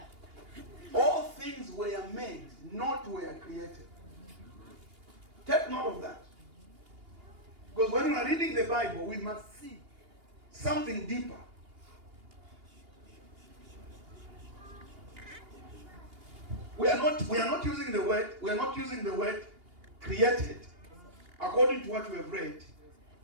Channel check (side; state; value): left; late; 2.8 ms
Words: All things were made, not were created. Take note of that. Because when we are reading the Bible, we must see something deeper. We are not using the word created according to what we have read.